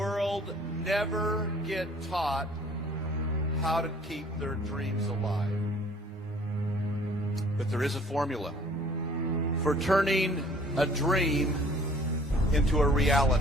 never get taught how to keep their dreams alive. But there is a formula for turning a dream into a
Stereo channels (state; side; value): normal; both; correlation 0.54